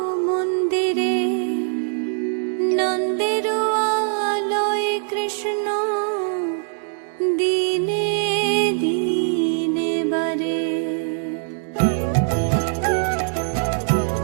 মন্দিরে, নন্দের আলয়ে কৃষ্ণ দিনে দিনে বারে।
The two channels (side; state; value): left; silent; 64 dB below the other